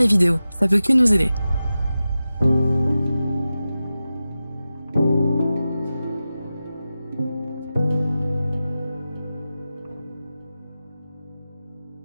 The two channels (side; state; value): both; inverted; correlation -0.94